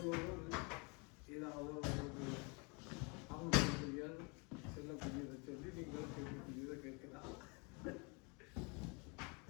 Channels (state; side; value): quieter; right; 31.7 dB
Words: ஏதாவது ஒரு அவங்களுடைய செல்லக்கூடியதை சொல்லி நீங்கள் கேட்கக்கூடியதை கேட்கலாம்.